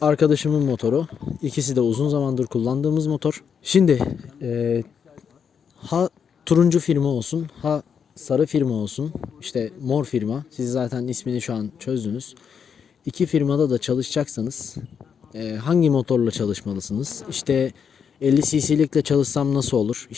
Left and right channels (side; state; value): right; quieter; 7.1 dB